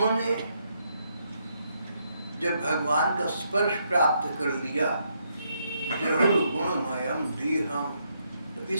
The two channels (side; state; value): both; inverted; correlation -0.76